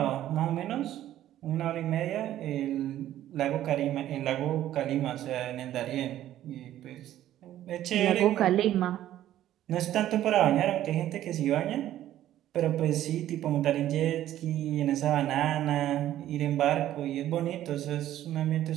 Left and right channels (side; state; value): left; quieter; 12.7 dB